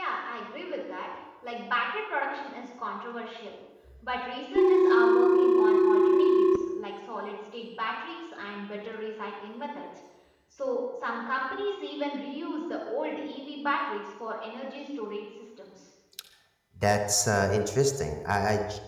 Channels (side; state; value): both; identical; correlation 1.00